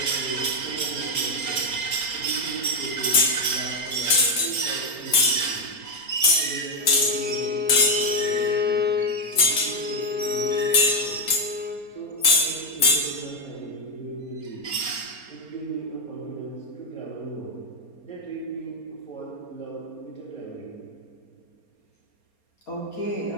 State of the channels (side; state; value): right; late; 4.3 ms